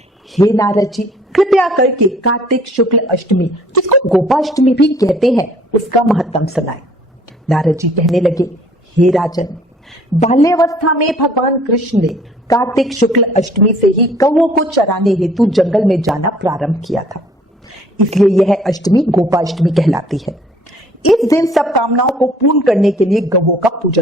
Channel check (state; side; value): normal; both; correlation 0.56